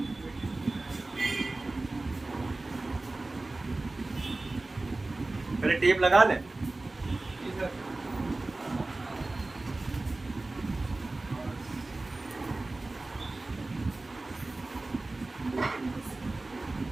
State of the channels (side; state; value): left; quieter; 3.1 dB